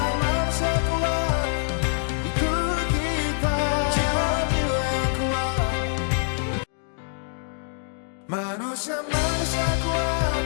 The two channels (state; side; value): silent; right; digital silence